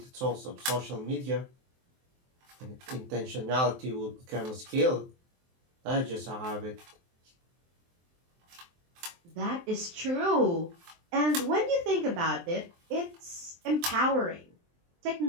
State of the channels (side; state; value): left; late; 23 ms